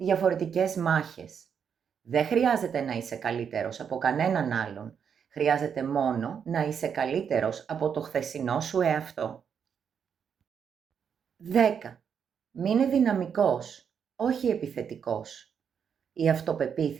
μάχες. Δεν χρειάζεται να είσαι καλύτερος από κανέναν άλλον. Χρειάζεται μόνο να είσαι καλύτερος από το χθεσινό σου εαυτό. 10. Μείνε δυναμικός, όχι επιθετικός. Η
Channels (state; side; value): quieter; left; 7.3 dB